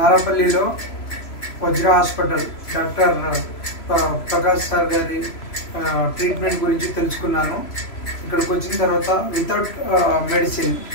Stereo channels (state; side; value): late; right; 3.0 ms